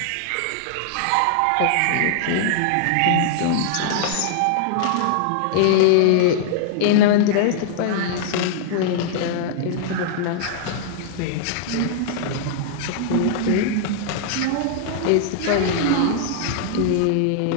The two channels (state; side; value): different; both; correlation -0.01